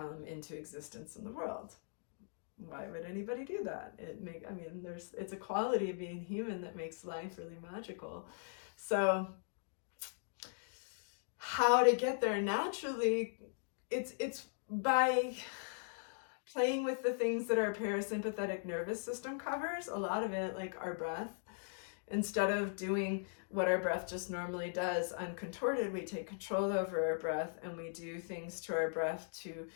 into existence in the world. Why would anybody do that? It's a quality of being human that makes life really magical. So how to get there naturally, it's by playing with the things that our parasympathetic nervous system covers, a lot of it, like our breath. Instead of doing what our breath just normally does uncontorted, we take control over our breath and we do things to our breath to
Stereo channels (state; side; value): silent; right; digital silence